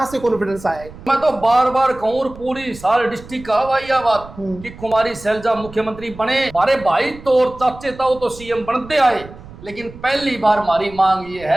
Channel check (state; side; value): noise; right; rumble, 17 dB below the sound